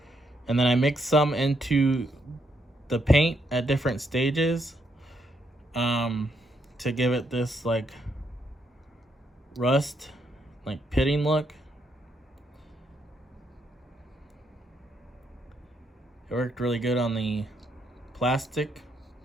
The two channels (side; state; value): both; normal; correlation 0.76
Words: and then I mixed some into the paint at different stages to give it this like rust, like pitting look. It worked really good on the plastic.